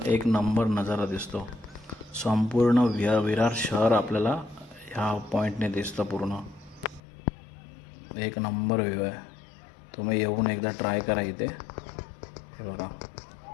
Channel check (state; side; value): drops out; right; at 7.0 s